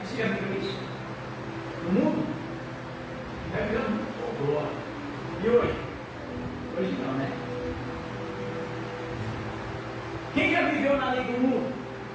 viveu isso? No mundo? Já viveu no mundo? Oh, glória. E hoje? Hoje não, né? Quem já viveu na lei do mundo?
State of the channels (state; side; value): identical; both; correlation 1.00